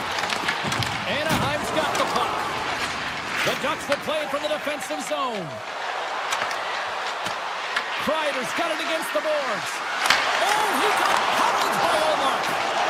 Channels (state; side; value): identical; both; correlation 1.00